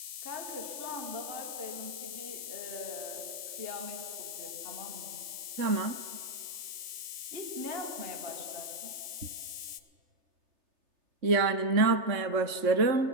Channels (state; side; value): late; left; 3.3 ms